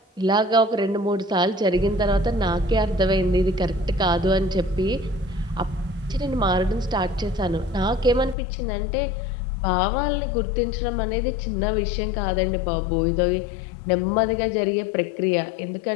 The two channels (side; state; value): right; drops out; at 8.3 s